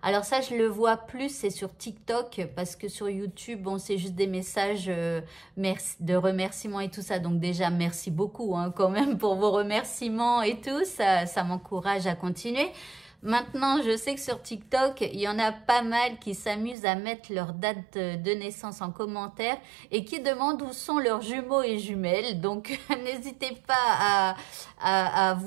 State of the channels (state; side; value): drops out; left; at 16.8 s